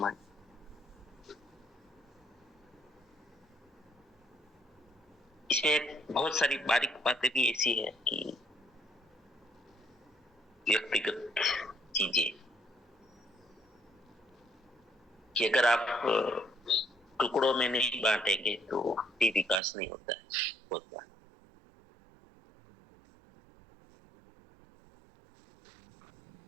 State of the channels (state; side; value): drops out; left; at 19.6 s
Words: है। इसमें बहुत सारी बारीक बातें भी ऐसी है कि व्यक्तिगत चीजें कि अगर आप टुकड़ों में नहीं बांटेंगे तो भी विकास नहीं होता है। बहुत बार